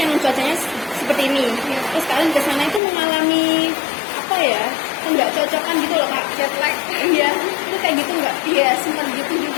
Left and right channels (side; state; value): right; drops out; at 2.8 s